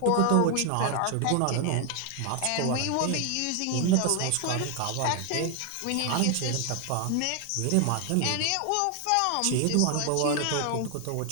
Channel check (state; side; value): different; both; correlation 0.00